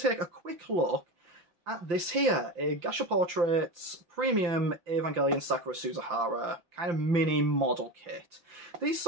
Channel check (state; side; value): late; left; 5.8 ms